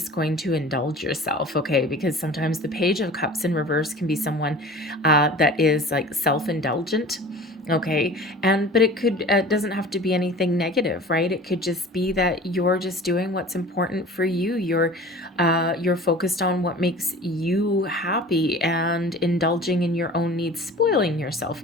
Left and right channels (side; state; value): both; normal; correlation 0.41